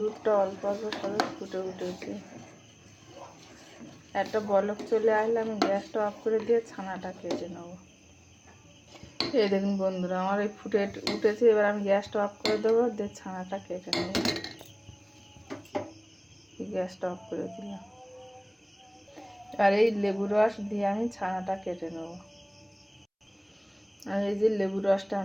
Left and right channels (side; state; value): both; identical; correlation 1.00